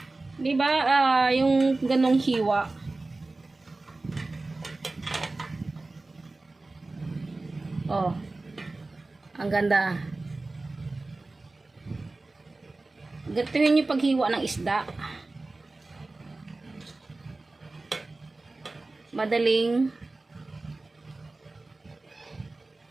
Diba? Yung ganong hiwa. Oh. Ang ganda. Gatuhin yung paghiwa ng isda. Madaling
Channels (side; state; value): left; quieter; 3.2 dB